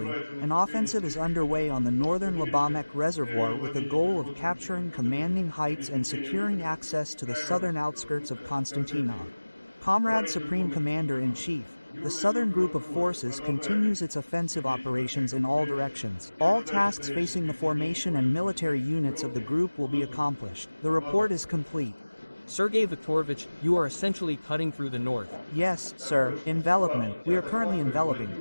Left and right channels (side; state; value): both; inverted; correlation -1.00